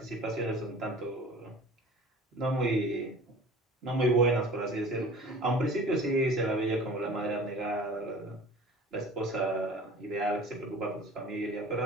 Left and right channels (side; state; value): both; normal; correlation 0.43